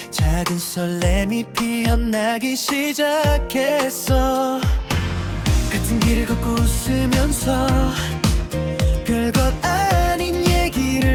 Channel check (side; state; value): both; identical; correlation 1.00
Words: 작은 설렘이 피어나기 시작했어. 같은 길을 걷고 웃으면서 별것 아닌